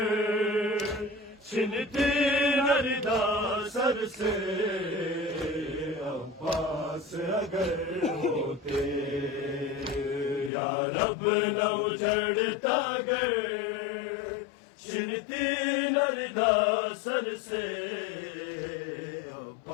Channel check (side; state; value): right; drops out; at 10.5 s